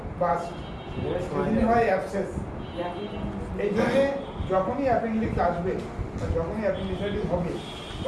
হয় অ্যাবসেস। এই জন্যে যখনই অ্যাপেন্ডিক্স আসবে বা যখনই অ্যাপেন্ডিসাইটিস হবে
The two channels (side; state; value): both; identical; correlation 1.00